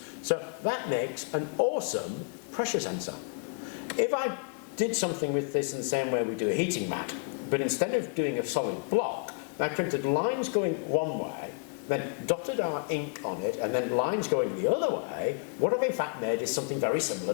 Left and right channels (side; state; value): right; quieter; 38.5 dB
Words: So that makes an awesome pressure sensor. If I did something with this in the same way we do a heating mat, but instead of doing a solid block, I printed lines going one way, then dotted our ink on it, and then lines going the other way. What I've in fact made is something very